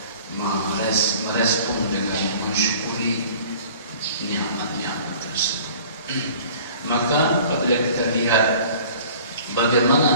merespon dengan mensyukuri nikmat-nikmat tersebut. Maka apabila kita lihat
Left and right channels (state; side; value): inverted; both; correlation -0.47